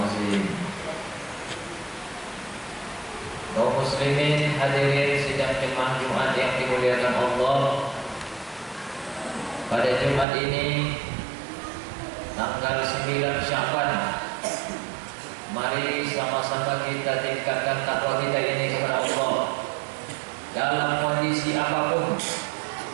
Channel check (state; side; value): drops out; left; at 10.2 s